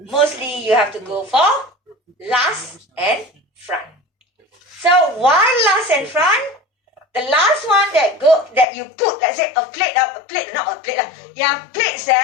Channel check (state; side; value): drops out; right; at 8.7 s